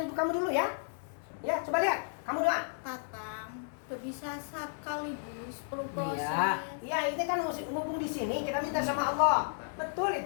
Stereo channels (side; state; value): right; silent; digital silence